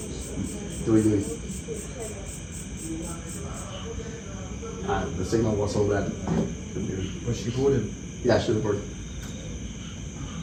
Do it. The signal was so bad. Was she boarded? Yeah, should have worked.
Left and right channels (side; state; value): both; identical; correlation 1.00